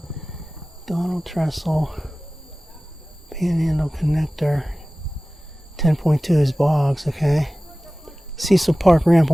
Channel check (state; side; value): normal; both; correlation 0.97